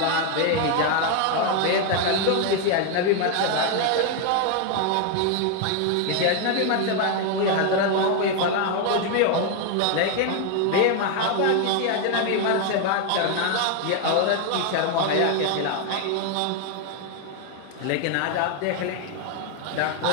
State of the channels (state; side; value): different; both; correlation 0.01